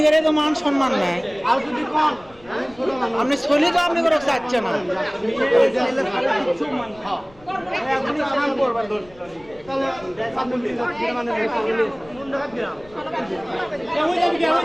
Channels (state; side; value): noise; left; rumble, 25 dB below the sound